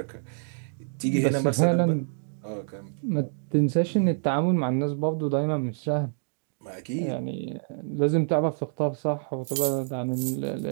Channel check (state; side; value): silent; left; digital silence